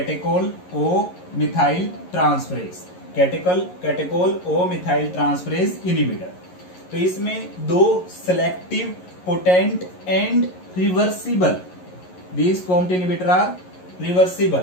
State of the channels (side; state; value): right; late; 11 ms